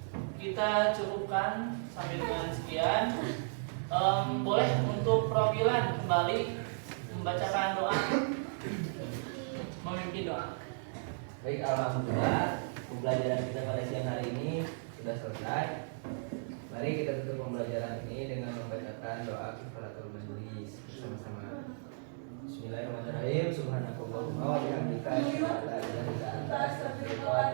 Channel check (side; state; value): left; silent; digital silence